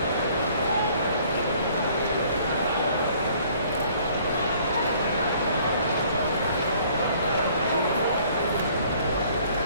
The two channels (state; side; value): inverted; both; correlation -0.58